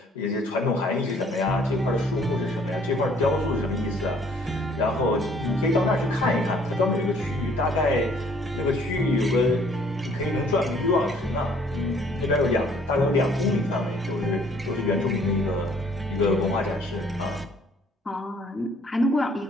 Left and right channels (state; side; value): normal; both; correlation 0.60